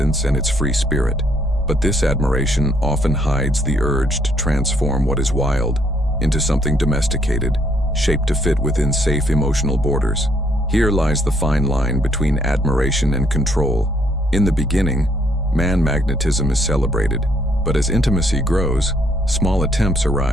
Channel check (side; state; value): both; normal; correlation 0.69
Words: and its free spirit. But this admiration often hides the urge to transform what is wild into something domesticated, shaped to fit within safe emotional borders. Here lies the fine line between admiration and control. In the beginning, man magnetism is celebrated, but as intimacy grows, small attempts